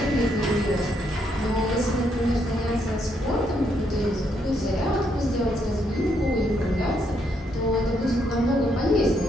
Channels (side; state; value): both; normal; correlation 0.75